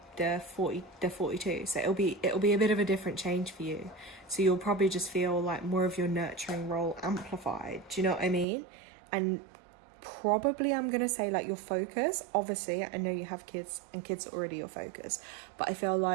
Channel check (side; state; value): left; drops out; at 8.5 s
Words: 42. So it'll be a bit of a different change for you. So you'll probably just feel like more of your nurturing role amplified. Do you know what I mean? And probably I'm gonna say like your focus, obviously I know you have kids and kids are already your focus, but I feel